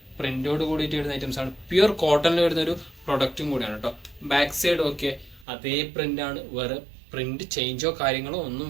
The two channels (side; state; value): left; drops out; at 5.5 s